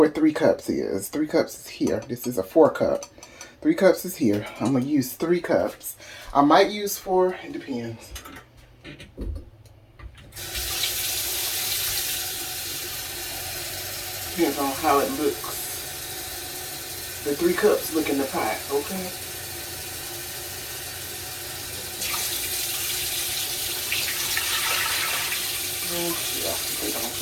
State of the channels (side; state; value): both; identical; correlation 1.00